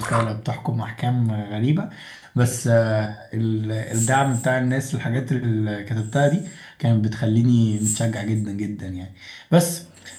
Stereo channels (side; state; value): both; identical; correlation 1.00